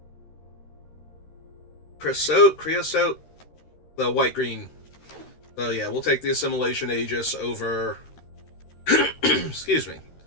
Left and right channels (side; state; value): right; late; 13 ms